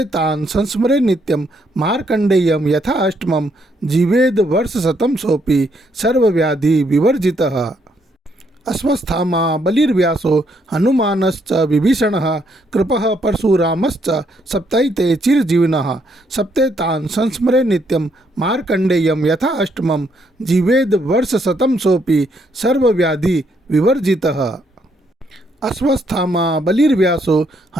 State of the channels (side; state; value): both; normal; correlation 0.73